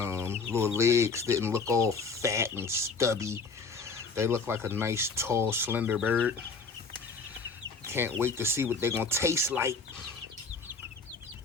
legs didn't look all fat and stubby. They look like a nice, tall, slender bird. Can't wait to see what they're going to taste like.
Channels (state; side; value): quieter; right; 4.4 dB